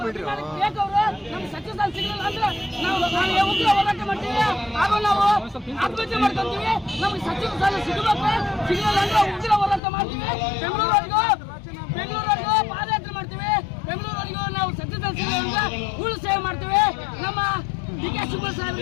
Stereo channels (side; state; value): right; drops out; at 9.8 s